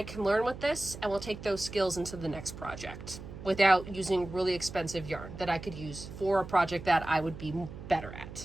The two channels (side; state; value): right; noise; hum, 12 dB below the sound